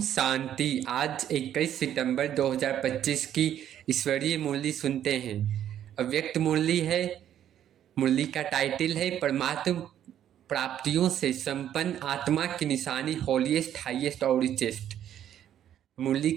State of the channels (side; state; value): left; quieter; 10.6 dB